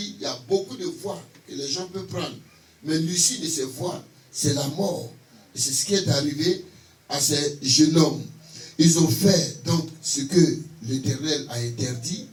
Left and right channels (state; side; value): identical; both; correlation 1.00